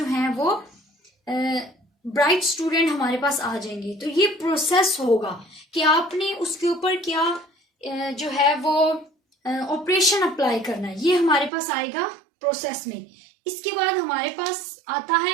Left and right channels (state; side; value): drops out; left; at 11.5 s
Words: हैं वो ब्राइट स्टूडेंट हमारे पास आ जाएंगे। तो ये प्रोसेस होगा कि आपने उसके ऊपर क्या जो है वो ऑपरेशन अप्लाई करना है, ये हमारे पास आएगा प्रोसेस में। इसके बाद हमारे पास आता